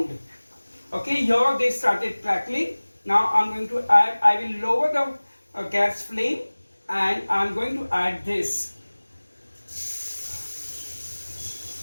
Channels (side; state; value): both; inverted; correlation -1.00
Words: Okay, here they started crackling. Now I'm going to add, I will lower the gas flame and I'm going to add this.